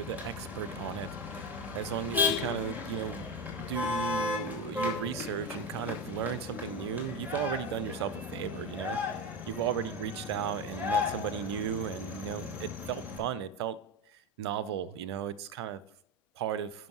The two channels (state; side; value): normal; both; correlation 0.18